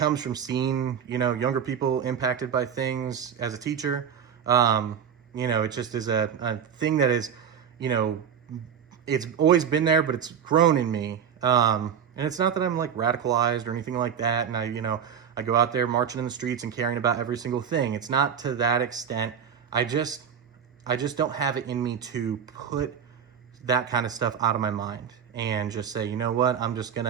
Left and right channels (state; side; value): quieter; left; 7.8 dB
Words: from seeing, younger people impacted by things as a teacher. It just is a thing that is, it's always been there, but it's grown in me. And it's not that I'm like radicalized or anything like that. And I go out there marching in the streets and caring about every single thing. It's not to that extent. I just don't have it in me to put that kind of stuff out of my mind and just say, you know what, I'm just